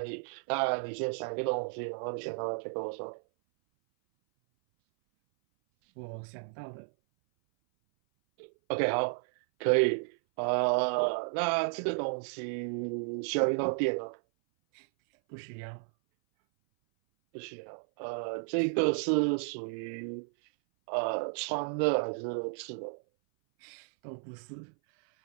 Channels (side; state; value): left; silent; 56 dB below the other